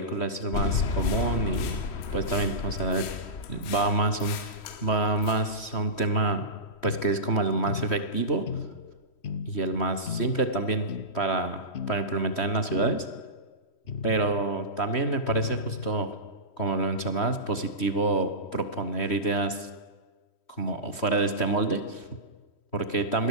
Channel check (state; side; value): late; right; 3.1 ms